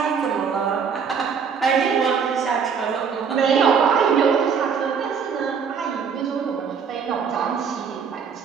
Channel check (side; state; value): left; quieter; 6.4 dB